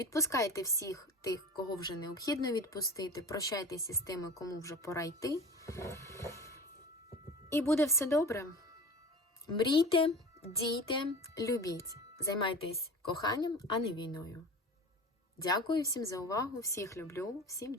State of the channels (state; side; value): normal; both; correlation 0.35